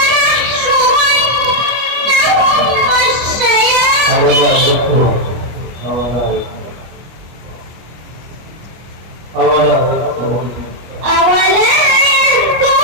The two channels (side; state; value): left; late; 25 ms